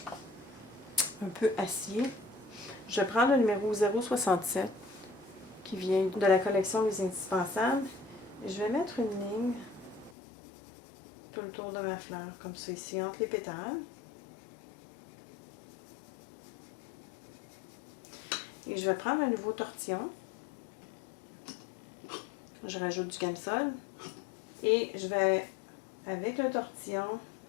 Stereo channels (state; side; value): drops out; right; at 10.1 s